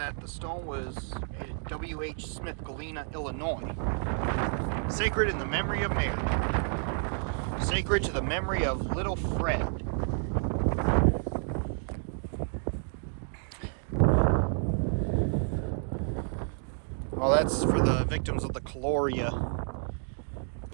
The stone was made at W.H. Smith, Galena, Illinois. Sacred in the memory of Mary. Sacred to the memory of little Fred. Well, that's for the victims of the Caloria.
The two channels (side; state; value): left; silent; 58 dB below the other